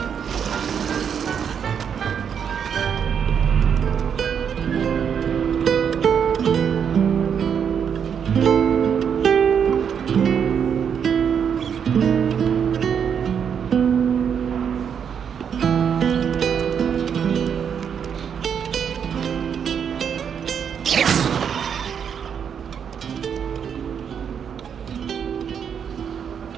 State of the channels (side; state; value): left; quieter; 7.6 dB